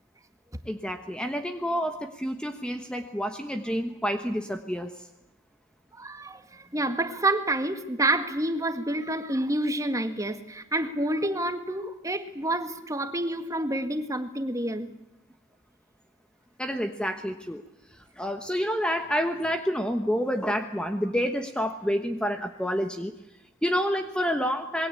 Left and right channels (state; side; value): normal; both; correlation 0.67